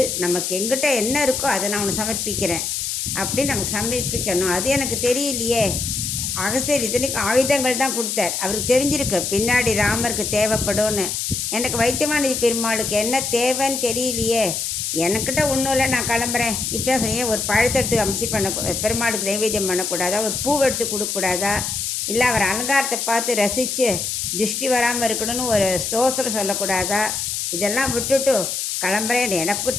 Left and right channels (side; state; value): left; noise; hiss, 2 dB below the sound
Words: நமக்கு எங்கிட்ட என்ன இருக்கோ அதை நான் அவனை சமர்ப்பிக்கிறேன் அப்படின்னு நமக்கு சமர்ப்பிக்கணும். அது எனக்கு தெரியலையே. அகஸ்தியர் இத்தனைக்கு ஆயுதங்கள் தான் கொடுத்தார். அவருக்கு தெரிஞ்சிருக்கு பின்னாடி ராமருக்கு தேவைப்படும்னு. எனக்கு வைத்தியமானதி பெருமாளுக்கு என்ன தேவைன்னு தெரியலையே, எனக்கிட்ட ஒன்றும் இல்லை, நான் கிளம்புறேன் இப்படி தான் சொன்னேன். ஒரு பழத்தை எடுத்து அம்சி பெருமாளுக்கு நைவேத்தியம் பண்ணக்கூடாதா, ஒரு பூவை எடுத்து கொடுக்கக்கூடாதா, இல்லை அவர் அலங்காரத்தை பார்த்து ரசித்து திருஷ்டி வராமல் இருக்கணும்னு ஒரு ஸ்தோத்திரம் சொல்லக்கூடாதா, இதெல்லாம் விட்டுட்டு கிளம்புறேன்,